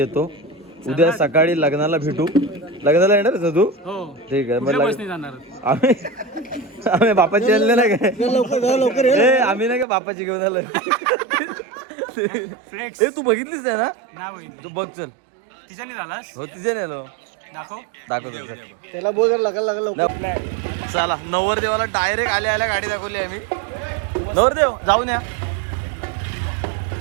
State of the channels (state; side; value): drops out; left; at 9.9 s